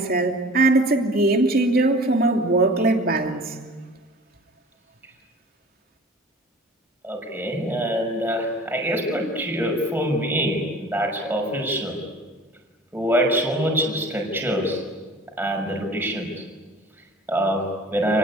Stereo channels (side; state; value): both; normal; correlation 0.44